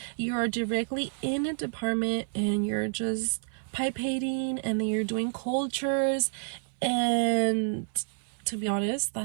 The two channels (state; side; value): silent; left; 57 dB below the other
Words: You are directly in a department and you're just pipating, and then you're doing cultures, and to be honest,